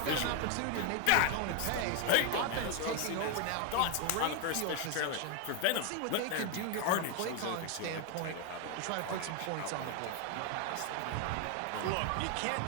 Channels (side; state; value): both; different; correlation 0.01